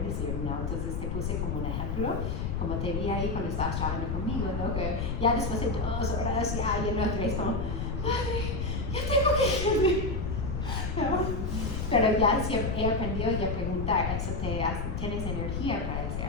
decir no. Entonces te puse como un ejemplo, como te vi ahí cuando estabas trabajando conmigo, ¿no? Que ya después de 2 horas ya no es como, madre, ya tengo que irme. ¿No? Pero ya he aprendido ya a preguntar, ¿tienes energía para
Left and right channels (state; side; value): noise; left; rumble, 1 dB below the sound